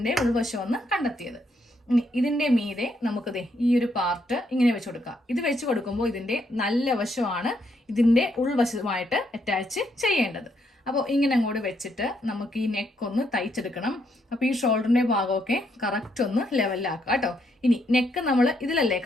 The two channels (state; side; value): normal; both; correlation 0.75